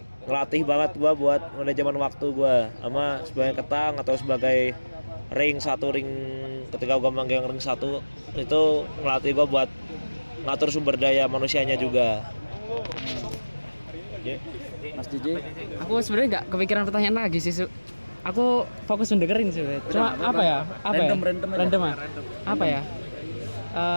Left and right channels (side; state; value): both; inverted; correlation -1.00